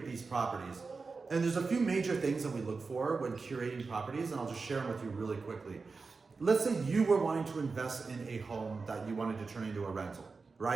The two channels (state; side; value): quieter; left; 4.4 dB